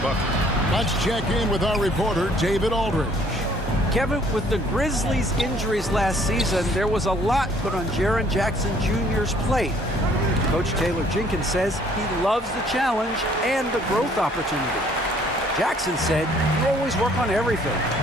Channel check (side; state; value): both; normal; correlation 0.60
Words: Let's check in with our reporter, David Aldridge. Kevin, with the Grizzlies' injuries last season, there was a lot put on Jaren Jackson Jr.'s plate. Coach Taylor Jenkins says he loves the challenge and the growth opportunity. Jackson said, you always work on everything.